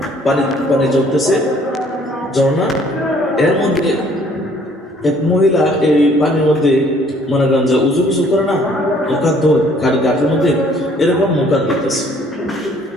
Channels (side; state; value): both; normal; correlation 0.60